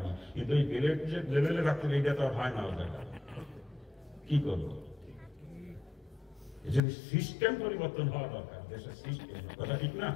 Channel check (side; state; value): right; drops out; at 6.8 s